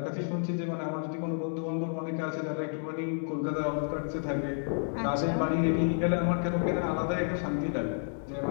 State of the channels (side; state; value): right; silent; digital silence